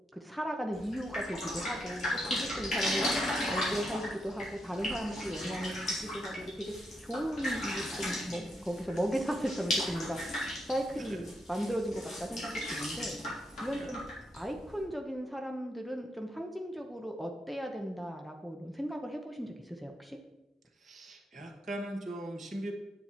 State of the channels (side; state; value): both; normal; correlation 0.81